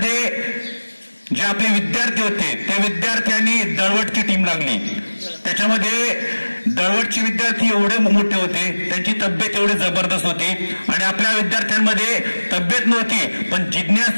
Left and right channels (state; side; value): inverted; both; correlation -1.00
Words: जे आपले विद्यार्थी होते त्या विद्यार्थ्यांनी दळवटची टीम लागली. त्याच्यामध्ये दळवटचे विद्यार्थी एवढे मोठे होते, त्यांची तब्येत एवढी जबरदस्त होती आणि आपल्या विद्यार्थ्यांमध्ये तब्येत नव्हती पण